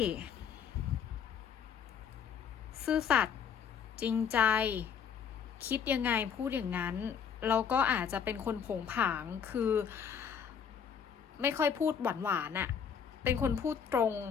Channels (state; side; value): quieter; right; 7.4 dB